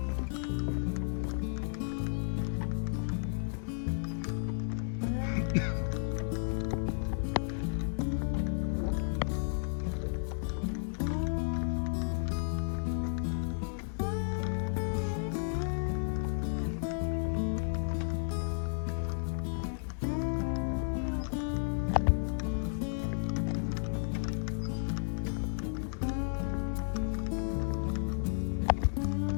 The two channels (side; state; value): right; silent; digital silence